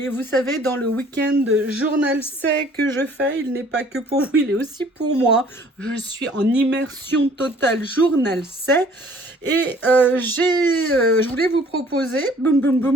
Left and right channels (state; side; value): normal; both; correlation 0.55